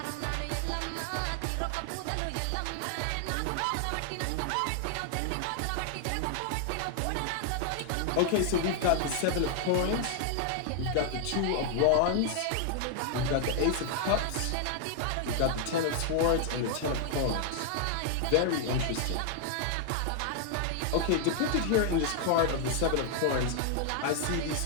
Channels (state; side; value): different; both; correlation 0.00